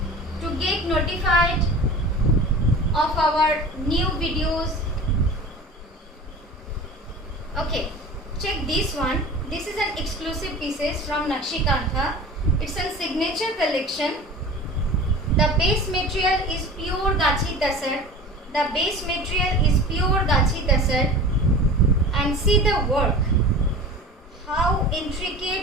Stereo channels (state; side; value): normal; both; correlation 0.38